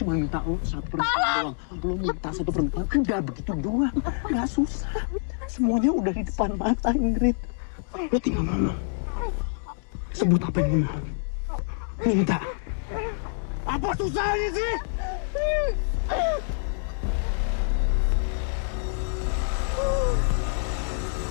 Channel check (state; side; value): silent; right; digital silence